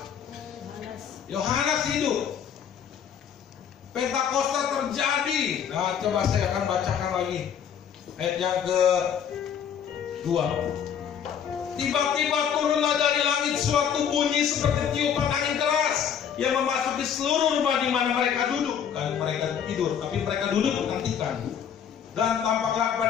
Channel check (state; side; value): quieter; right; 8.2 dB